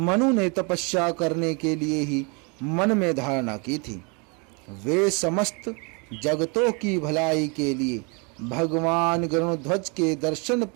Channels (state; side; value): quieter; left; 32.5 dB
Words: ने तपस्या करने के लिए ही मन में धारणा की थी। वे समस्त जगतों की भलाई के लिए भगवान गरुड़ध्वज के दर्शन